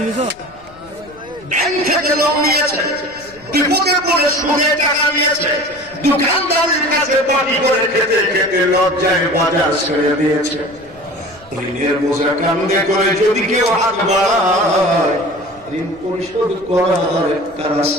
ব্যাংক থেকে লোন নিয়েছে, বিপদে পড়ে সুদে টাকা নিয়েছে, দোকানদারের কাছে পানি করে খেতে খেতে লজ্জায় বাজার ছেড়ে দিয়েছে। ঋণের বোঝা কান্দে করে যদি কেউ হাত বাড়ায়, ঋণ পরিশোধ করার একটা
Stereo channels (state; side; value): noise; left; rumble, 25 dB below the sound